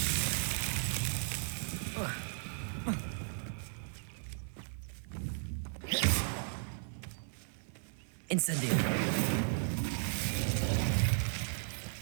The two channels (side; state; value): left; silent; 54 dB below the other